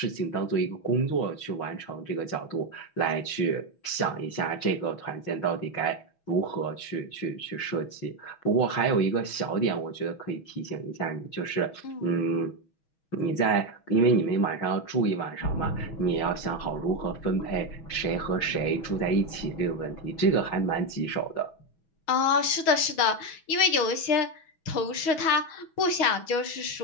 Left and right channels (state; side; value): late; right; 6.2 ms